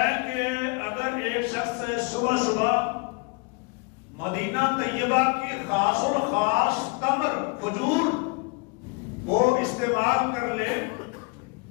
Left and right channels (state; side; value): quieter; right; 29.4 dB